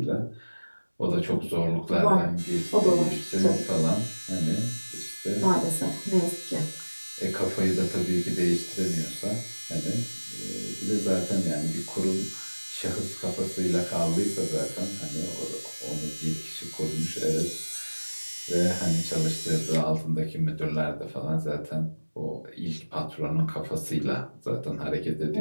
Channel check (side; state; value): both; inverted; correlation -1.00